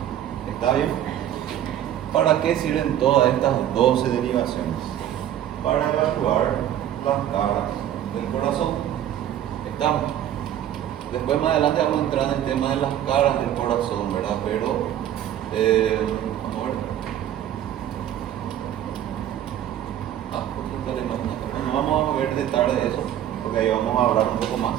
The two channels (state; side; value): quieter; left; 11.3 dB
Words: ¿Está bien? ¿Para qué sirven todas estas 12 derivaciones? Para evaluar las caras del corazón. ¿Estamos? Después más adelante vamos a entrar en el tema de las caras del corazón, ¿verdad? Pero vamos a ver. No vamos a ver detalles de eso, porque ahí vamos a hablar un poco más.